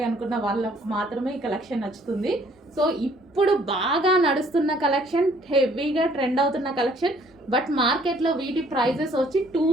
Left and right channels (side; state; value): both; normal; correlation 0.61